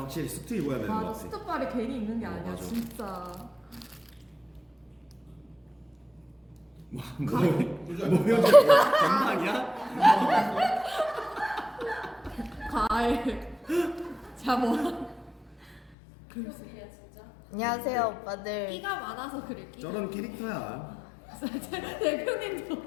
수트 입어야 되는 것 맞아 같아. 스톱발이 괜히 있는 게 아니야 맞아. 진짜. 뭐 효주 건방이야? 과일. 자 뭐. 안녕하세요 오빠들. 끼가 많아서 그래. 끼가. 저런 캐릭터야.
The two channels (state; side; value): drops out; right; at 15.8 s